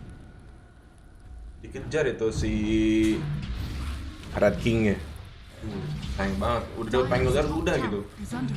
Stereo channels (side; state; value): both; identical; correlation 1.00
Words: Dikejar itu si Red King-nya. Sayang banget, udah Pengulier udah gitu. Is